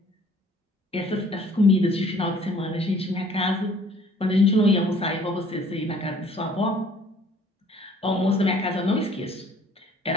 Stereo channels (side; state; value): both; normal; correlation 0.56